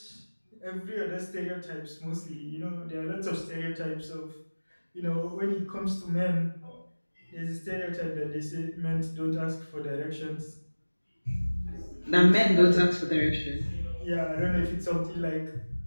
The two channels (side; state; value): both; inverted; correlation -1.00